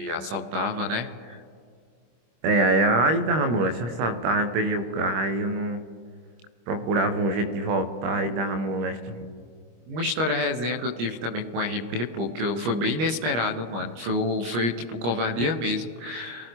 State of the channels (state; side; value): late; left; 25 ms